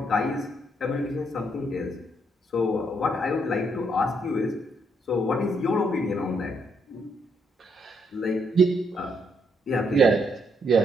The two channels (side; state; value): both; normal; correlation 0.74